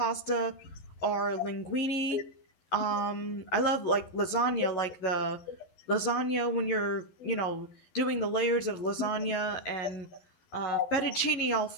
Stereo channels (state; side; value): late; right; 11 ms